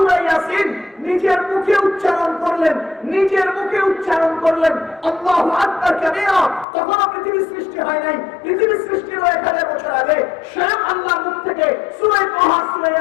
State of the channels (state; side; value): drops out; right; at 6.7 s